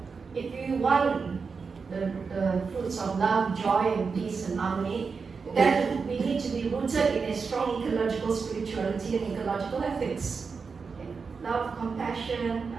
If you want the fruits of love, joy, and peace and harmony, then we need to be rooted in a strong ecological spirituality and ecological ethics. Okay. Love, compassion,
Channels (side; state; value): left; quieter; 5.1 dB